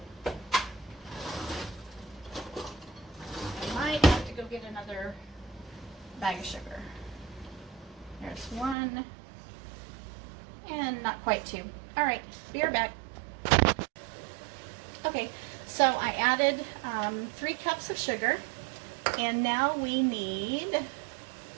might have to go get another bag of sugar. There's 1, and not quite 2. All right, be right back. Okay, so I added 3 cups of sugar, and now we need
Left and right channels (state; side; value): drops out; left; at 8.8 s